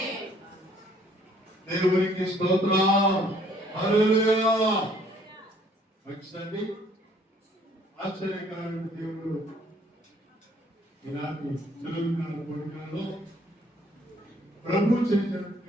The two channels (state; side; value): normal; both; correlation 0.62